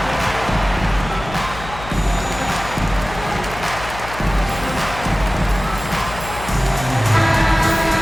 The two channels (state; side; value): noise; left; hum, 12 dB below the sound